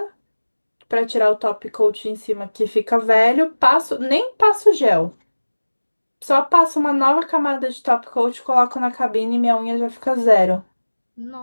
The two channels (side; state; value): both; inverted; correlation -1.00